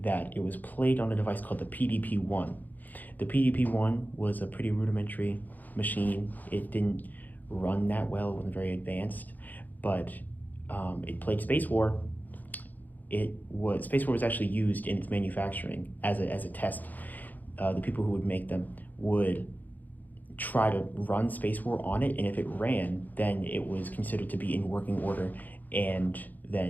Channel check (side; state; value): right; late; 0.083 ms